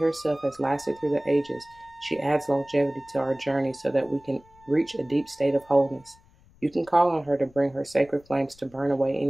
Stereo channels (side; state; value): left; noise; rumble, 28 dB below the sound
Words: has lasted through the ages, she adds longevity to our journey so that we can reach a deep state of wholeness. You can call on her to bring her sacred flames to burn away